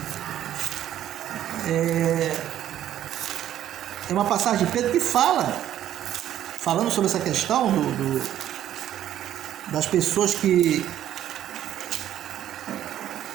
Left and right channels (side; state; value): left; quieter; 11.6 dB